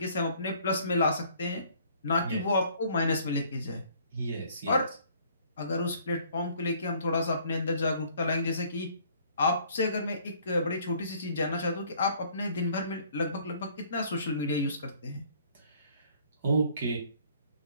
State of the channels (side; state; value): both; inverted; correlation -0.58